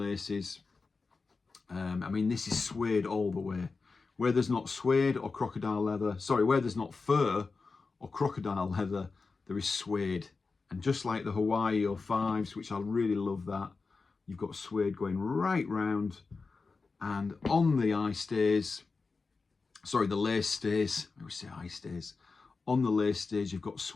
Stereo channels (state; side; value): quieter; right; 4.3 dB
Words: I mean, this is suede all the way. Where there's not suede or crocodile leather, sorry, where there's not fur or crocodile leather, there is suede. And just like the Hawaii 05s, which I really love that, you've got suede going right round. And on the eye stays, sorry, the lace stays, I always say eye stays. On the lace stays, you've got